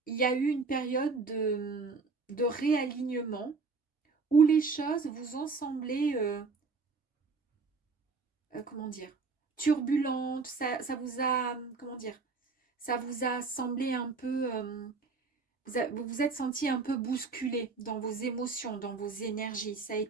y a eu une période de réalignement où les choses vous ont semblé, comment dire, turbulentes. Ça vous a, comment dire, ça vous a semblé un peu, vous vous êtes senti un peu bousculé dans vos émotions, dans vos énergies. Ça a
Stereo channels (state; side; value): quieter; left; 4.4 dB